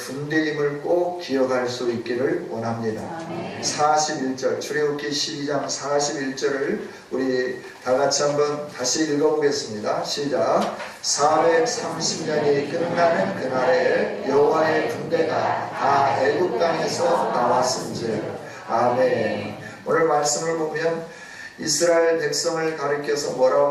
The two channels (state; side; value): identical; both; correlation 1.00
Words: 꼭 기억할 수 있기를 원합니다. 41절 출애굽기 12장 41절을 우리 다같이 한번 다시 읽어보겠습니다. 시작. 430년이 끝나는 그날에 여호와의 군대가 다 애굽 땅에서 나왔은즉. 아멘. 오늘 말씀을 보면 이스라엘 백성을 가리켜서